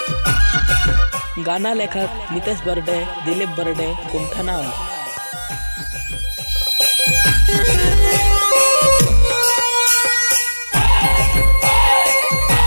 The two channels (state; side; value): inverted; both; correlation -1.00